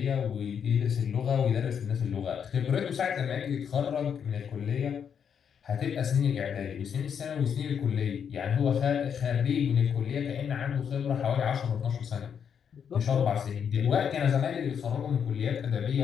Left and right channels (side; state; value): right; quieter; 7.6 dB